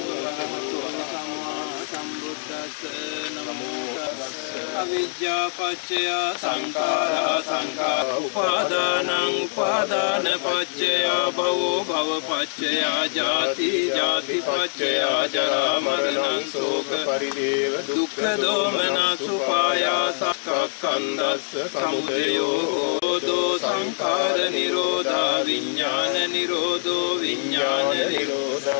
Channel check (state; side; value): silent; right; digital silence